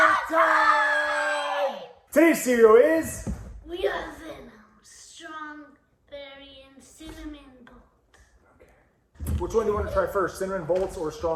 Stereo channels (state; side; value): identical; both; correlation 1.00